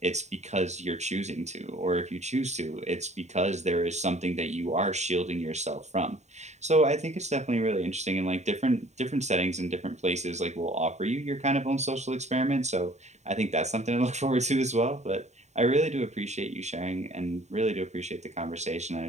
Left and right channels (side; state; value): left; late; 0.33 ms